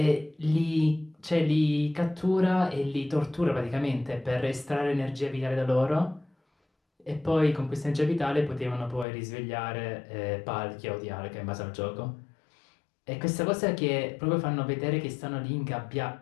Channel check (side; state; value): right; drops out; at 9.1 s